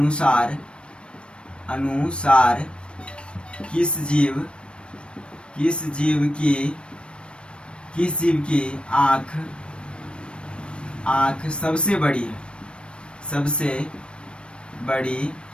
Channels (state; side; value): late; right; 0.058 ms